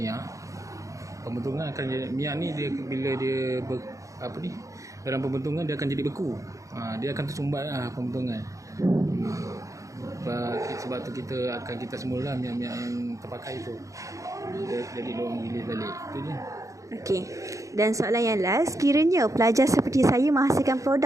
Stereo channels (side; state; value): left; late; 0.16 ms